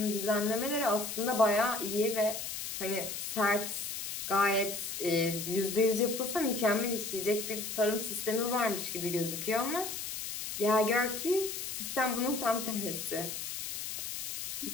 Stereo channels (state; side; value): noise; left; hiss, 5 dB below the sound